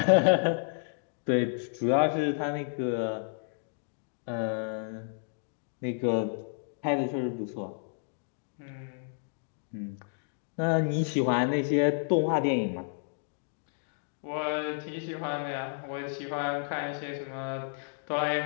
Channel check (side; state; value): right; silent; digital silence